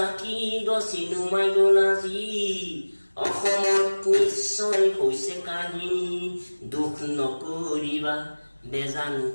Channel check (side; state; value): both; inverted; correlation -1.00